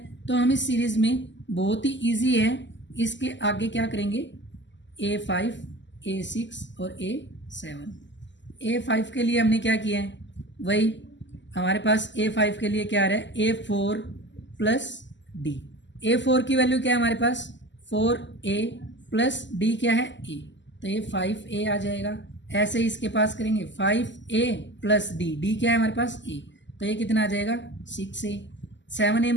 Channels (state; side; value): late; right; 0.53 ms